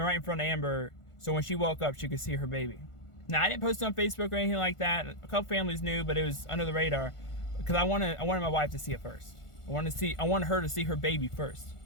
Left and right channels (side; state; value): right; late; 1.5 ms